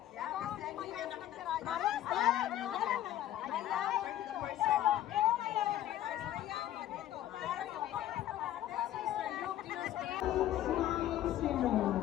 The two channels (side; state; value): right; quieter; 12.6 dB